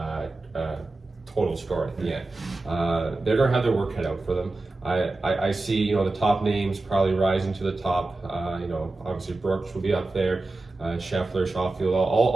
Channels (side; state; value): left; quieter; 3.1 dB